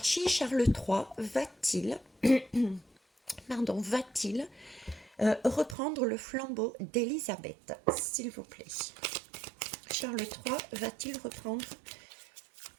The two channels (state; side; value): drops out; left; at 5.8 s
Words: Charles III va-t-il reprendre le flambeau d'Élisabeth, s'il vous plaît? Charles III va-t-il reprendre